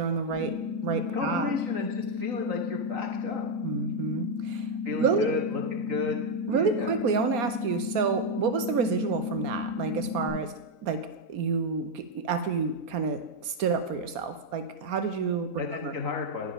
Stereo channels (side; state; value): left; late; 4.3 ms